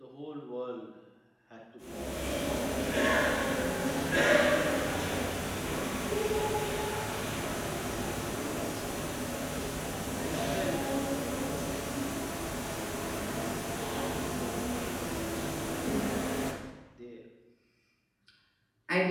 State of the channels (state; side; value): identical; both; correlation 1.00